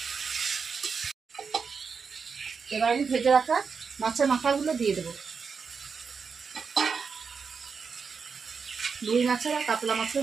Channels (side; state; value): left; quieter; 5.6 dB